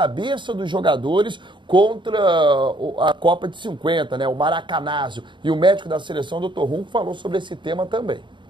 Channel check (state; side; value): late; left; 0.23 ms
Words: dos jogadores contra a Copa de 50, né, o Maracanazo. E o médico da seleção, Dr. Runco, falou sobre esse tema também.